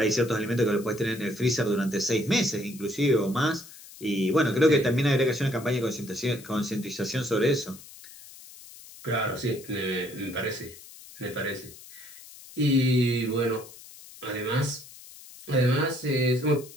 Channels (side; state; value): left; noise; hiss, 18 dB below the sound